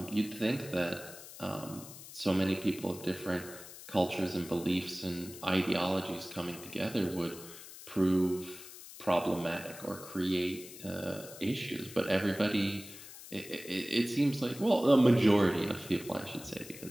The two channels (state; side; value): noise; left; hiss, 15 dB below the sound